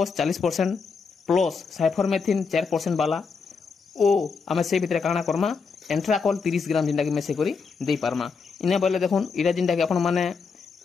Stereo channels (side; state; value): right; quieter; 5.2 dB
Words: 40% प्लस साइफरमेथिन 4% वाला ओ आमे से भितरे काना करमा एंट्राकॉल 30 ग्राम जिनटा कि मेसे करी देई पारमा। इने बोले देखुन इरा जिनटा कि आपण माने